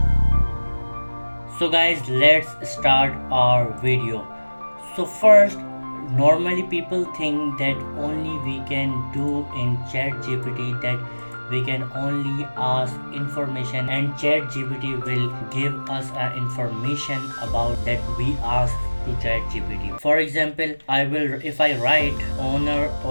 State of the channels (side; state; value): both; inverted; correlation -1.00